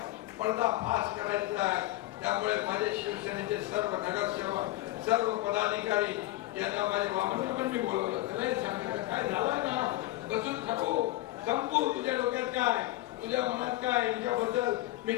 पडदा फास करायचा आहे. त्यामुळे माझे शिवसेनेचे सर्व नगरसेवक, सर्व पदाधिकारी यांना माझे वामन पण मी बोलवलं. सांगितलं काय झालं ना, बसून थांबू, संपू, तुझ्या डोक्यात काय, तुझ्या मनात काय, यांच्याबद्दल मी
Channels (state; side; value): quieter; right; 17.1 dB